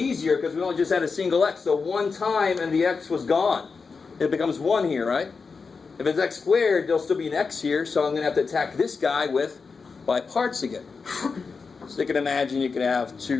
because we only just had a single x. So one time and the x was gone. It becomes 1 here, right? If it's x squared, there'll still be an x here. So I'm going to have to attack this guy with by parts again. So you can imagine you can have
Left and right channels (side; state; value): right; quieter; 4.9 dB